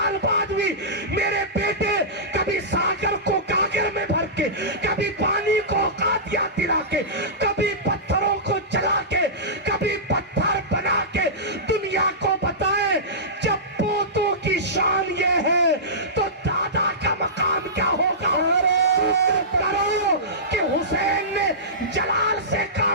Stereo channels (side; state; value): both; normal; correlation -0.19